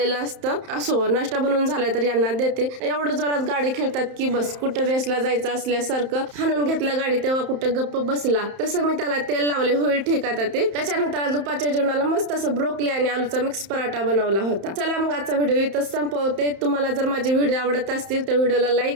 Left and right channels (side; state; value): left; late; 31 ms